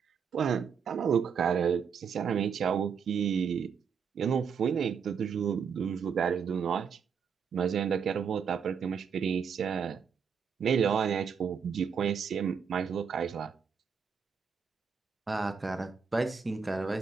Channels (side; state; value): left; quieter; 6.6 dB